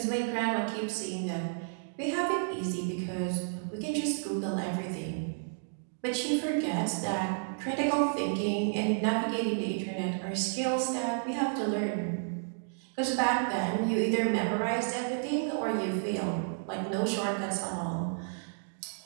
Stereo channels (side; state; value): left; silent; digital silence